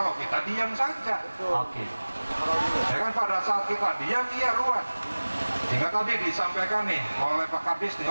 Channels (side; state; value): both; inverted; correlation -1.00